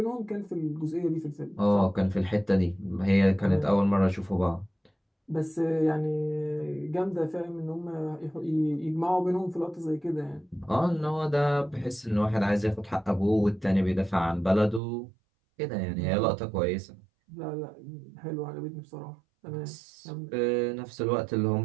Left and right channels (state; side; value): drops out; left; at 14.8 s